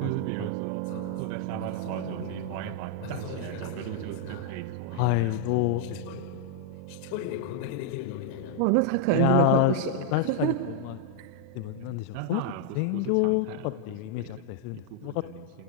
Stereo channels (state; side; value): different; both; correlation 0.00